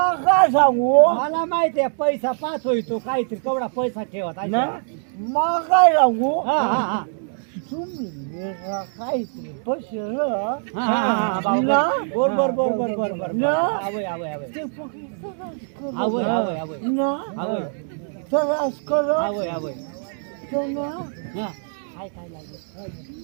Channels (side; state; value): left; silent; 63 dB below the other